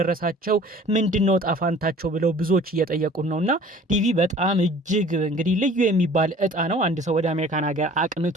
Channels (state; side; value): normal; both; correlation 0.49